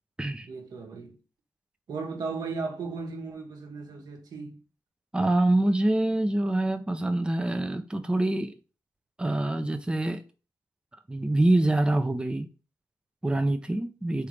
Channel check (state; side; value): normal; both; correlation 0.97